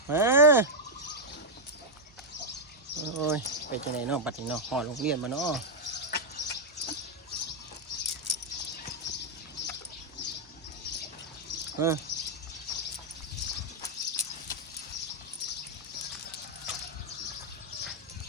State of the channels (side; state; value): both; normal; correlation -0.01